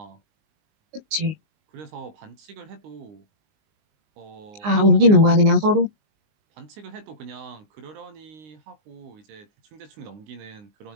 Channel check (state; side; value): late; left; 19 ms